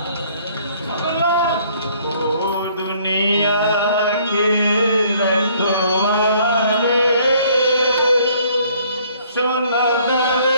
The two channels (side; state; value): both; inverted; correlation -0.61